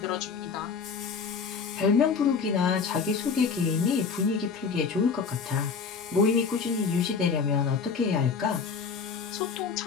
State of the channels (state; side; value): quieter; right; 5.5 dB